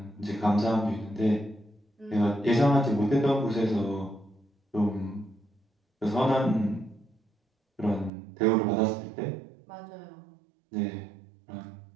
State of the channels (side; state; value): left; drops out; at 8.1 s